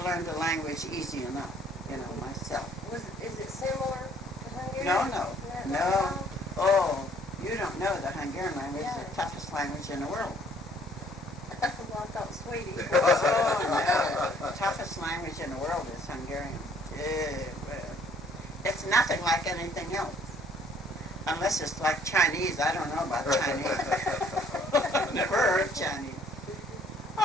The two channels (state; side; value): normal; both; correlation 0.60